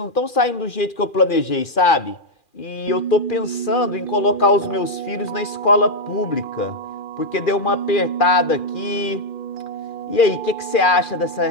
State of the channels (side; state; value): right; late; 2.4 ms